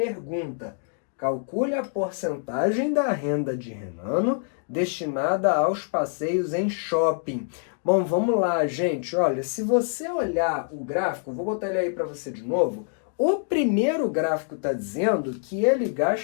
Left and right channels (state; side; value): silent; right; digital silence